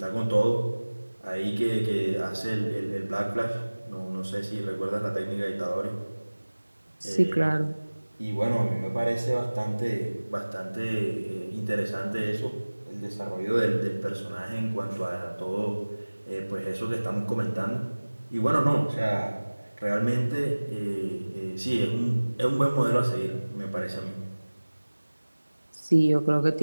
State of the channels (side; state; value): both; inverted; correlation -1.00